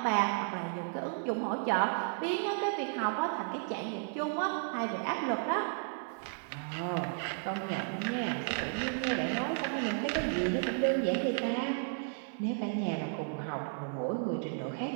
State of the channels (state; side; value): silent; left; 55 dB below the other